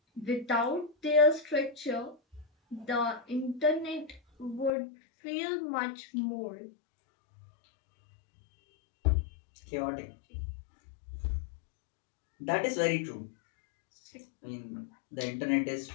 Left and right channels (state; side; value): drops out; right; at 4.7 s